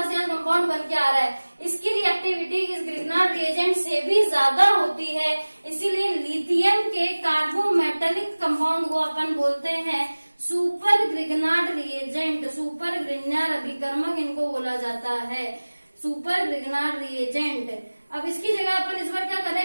यहाँ कंपाउंड बन के आ रहा है। इसकी रिएक्टिविटी इस ग्रिग्नार्ड रिएजेंट से भी ज्यादा होती है, इसीलिए लिथियम के कार्बोमेटेलिक कंपाउंड को अपन बोलते हैं super Grignard reagent. Super Grignard अभिकर्मक इनको बोला जाता है, सुपर ग्रिग्नार्ड रिएजेंट। अब इसकी जगह अपन इस बार क्या कर रहे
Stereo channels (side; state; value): both; inverted; correlation -1.00